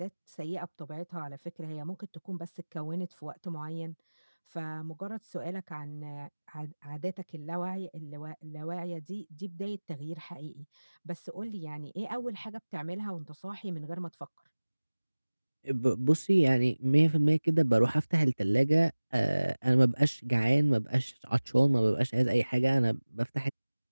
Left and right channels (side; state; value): both; inverted; correlation -1.00